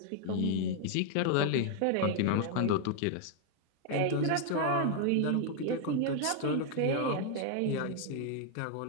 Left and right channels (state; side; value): different; both; correlation 0.00